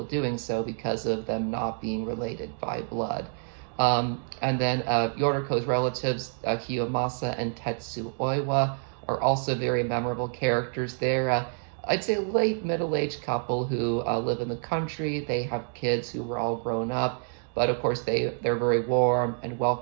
doing so because of them not being related by blood. And then Yoriko's relatives, Kiyomasa and Tetsu Oiwa, are also very memorable characters. They're, I'd say, late middle-aged couple who live in the country. They have kids who were all grown up, but of course they're very warm and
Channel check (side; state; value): left; silent; 59 dB below the other